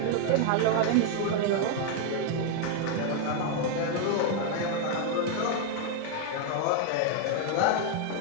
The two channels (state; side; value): different; both; correlation 0.00